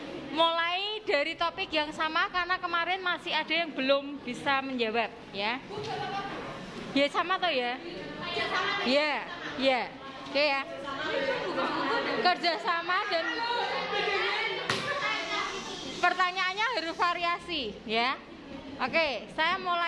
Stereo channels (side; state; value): both; identical; correlation 1.00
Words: mulai dari topik yang sama karena kemarin masih ada yang belum bisa menjawab ya. Ya sama toh ya. Ya, ya. Oke ya. Kerjasama dan pertanyaannya harus variasi ya. Oke, saya